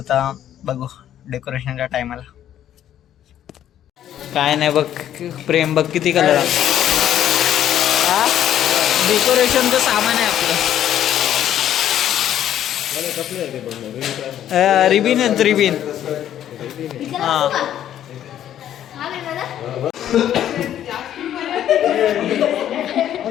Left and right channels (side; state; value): right; quieter; 11.0 dB